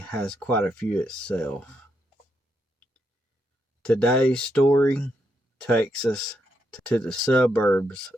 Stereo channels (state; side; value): normal; both; correlation 0.80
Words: quite a few itself. Today's story takes us to the suburbs